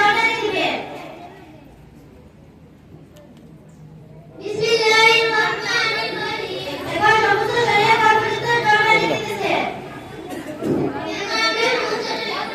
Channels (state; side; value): identical; both; correlation 1.00